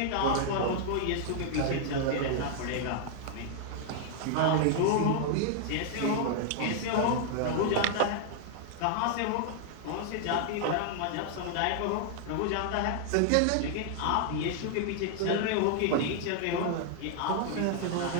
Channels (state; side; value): different; both; correlation -0.01